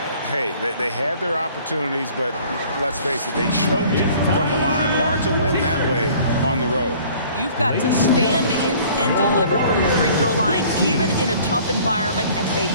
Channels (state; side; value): inverted; both; correlation -0.52